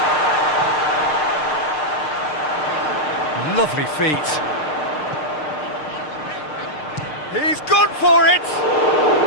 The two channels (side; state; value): right; late; 6.6 ms